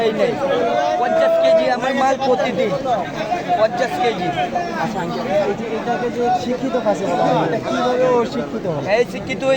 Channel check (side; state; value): both; identical; correlation 1.00